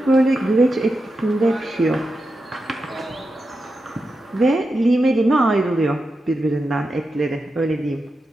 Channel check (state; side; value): normal; both; correlation 0.89